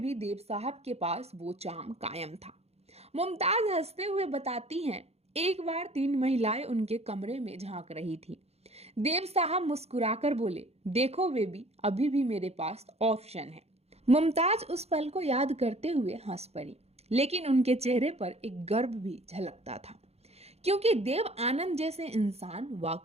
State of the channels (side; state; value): left; late; 0.30 ms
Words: भी देव साहब के पास वो चार्म कायम था। मुमताज हंसते हुए बताती हैं, एक बार 3 महिलाएं उनके कमरे में झांक रही थी। देव साहब मुस्कुराकर बोले, देखो बेबी, अभी भी मेरे पास ऑप्शन है। मुमताज उस पल को याद करते हुए हंस पड़ी, लेकिन उनके चेहरे पर एक गर्व भी झलकता था, क्योंकि देव आनंद जैसे इंसान